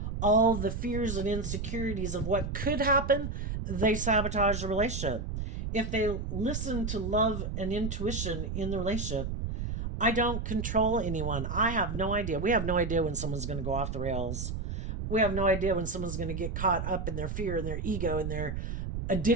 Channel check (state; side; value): noise; right; rumble, 4 dB below the sound